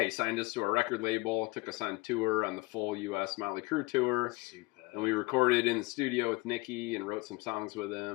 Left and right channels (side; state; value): right; quieter; 23.5 dB